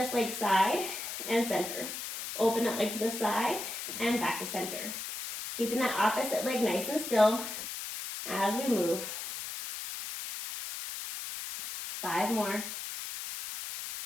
leg side and center. Open that leg to the side and back to center. Keeping that opposite leg nice and still as we move. 5 more.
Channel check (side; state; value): left; noise; hiss, 7 dB below the sound